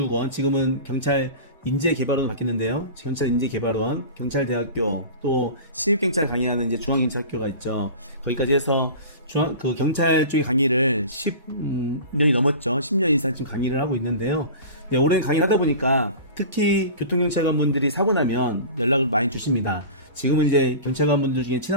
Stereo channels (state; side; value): inverted; both; correlation -0.35